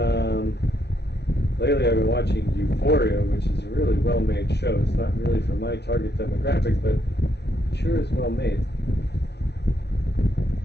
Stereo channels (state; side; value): late; right; 0.49 ms